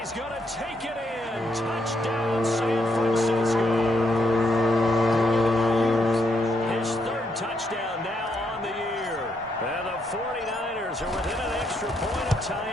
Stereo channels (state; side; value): normal; both; correlation 0.77